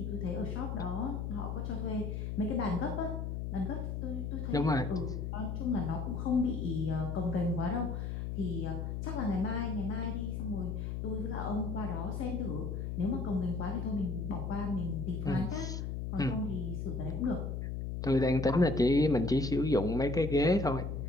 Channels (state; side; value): noise; left; hum, 3 dB below the sound